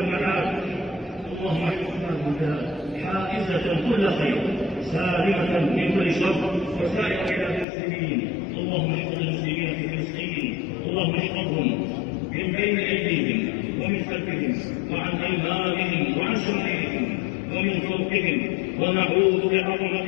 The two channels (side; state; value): right; drops out; at 7.7 s